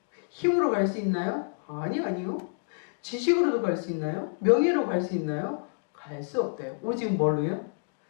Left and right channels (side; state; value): right; silent; digital silence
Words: 힘으로 갈 수 있나요? 아니요. 지식으로도 갈 수 있나요? 명예로 갈 수 있나요? 갈 수 없대요. 오직 뭘로요?